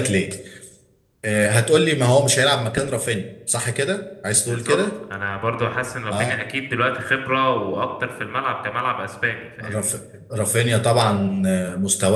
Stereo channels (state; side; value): identical; both; correlation 1.00